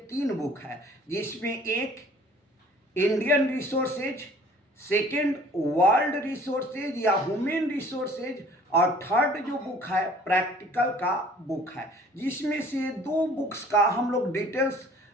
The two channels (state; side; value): normal; both; correlation 0.52